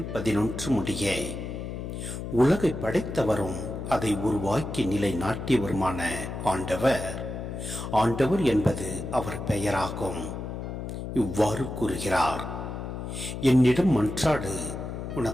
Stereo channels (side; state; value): left; noise; hum, 6 dB below the sound